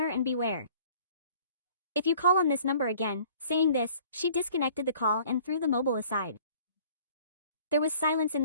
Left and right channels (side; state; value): both; inverted; correlation -0.53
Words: and beware. If you call on this number again," saying this, she disconnected the call and threw the mobile aside. There was silence in